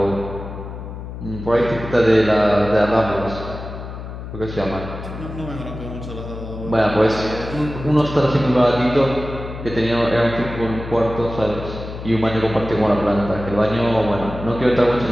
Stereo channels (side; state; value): left; noise; hum, 10 dB below the sound